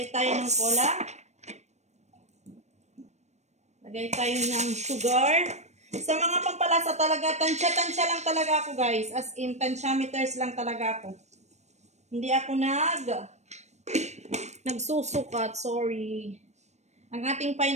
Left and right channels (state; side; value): late; left; 0.33 ms